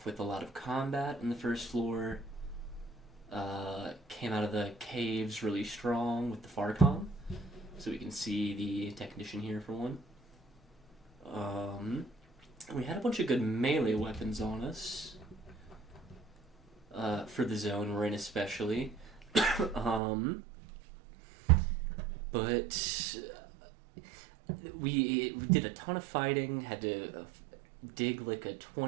with a lot of combat on the first floor. Came out of the caves really strong with the Farcom. So we can see the technician here for one. We had a bunch of good melee weapons on us. For the zone we're in especially. But we did a ton of fighting, had to dig like a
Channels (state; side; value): drops out; left; at 20.0 s